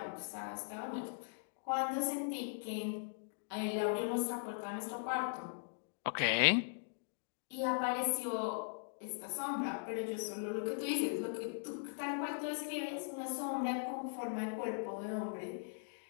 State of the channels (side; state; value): right; silent; digital silence